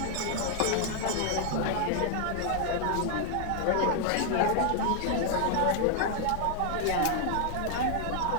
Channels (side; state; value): both; different; correlation 0.00